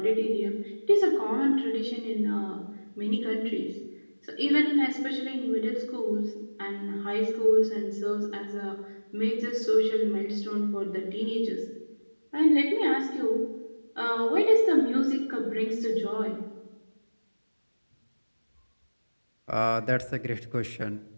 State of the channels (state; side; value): inverted; both; correlation -1.00